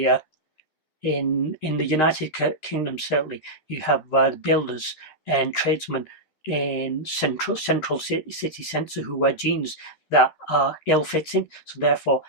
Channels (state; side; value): late; right; 13 ms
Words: in the United Kingdom, certainly you have builders and tradesmen in central city centre who wear jeans that are ill-fitting, so therefore